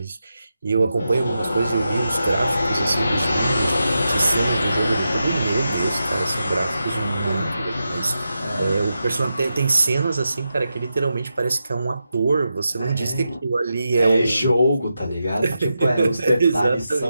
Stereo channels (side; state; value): both; inverted; correlation -0.88